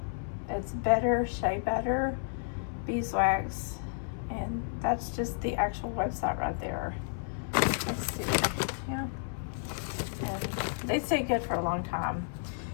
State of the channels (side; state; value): right; silent; 57 dB below the other